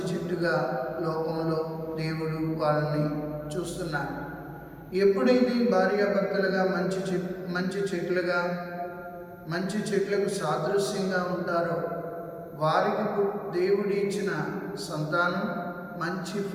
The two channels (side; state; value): both; identical; correlation 1.00